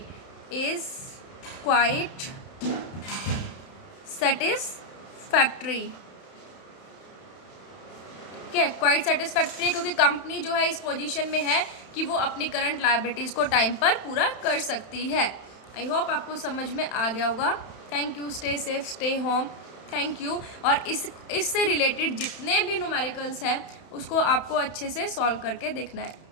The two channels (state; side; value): late; right; 31 ms